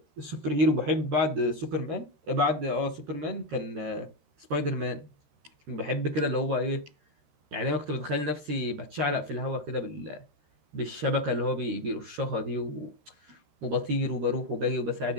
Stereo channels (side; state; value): left; late; 13 ms